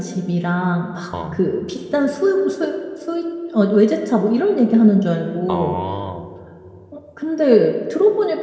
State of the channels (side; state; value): both; identical; correlation 1.00